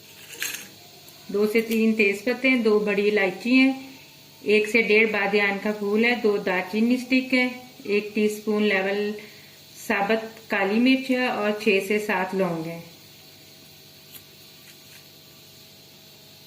2 से 3 तेज पत्ते हैं, 2 बड़ी इलायची हैं, 1 से 1.5 बादियान का फूल है, 2 दालचीनी स्टिक है, 1 टीस्पून लेवल साबुत काली मिर्च है और 6 से 7 लौंग है।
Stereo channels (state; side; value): identical; both; correlation 1.00